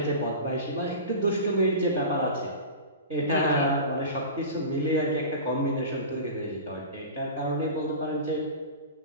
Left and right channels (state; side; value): inverted; both; correlation -0.31